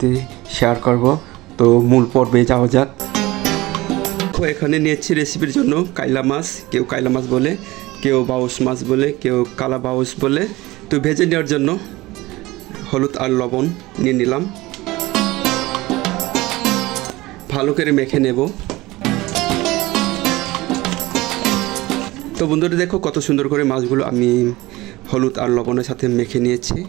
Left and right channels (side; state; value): left; quieter; 19.6 dB